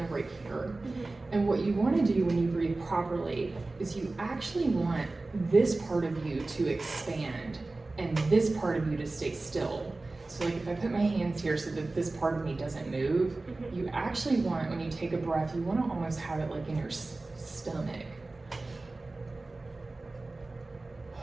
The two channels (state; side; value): quieter; left; 3.2 dB